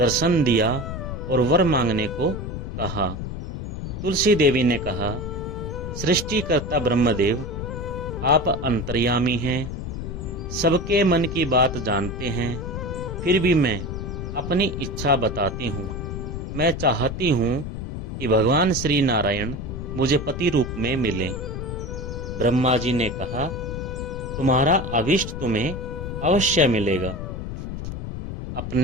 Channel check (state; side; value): noise; left; rumble, 6 dB below the sound